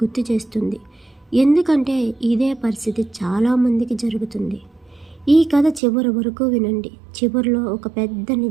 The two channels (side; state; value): left; drops out; at 5.8 s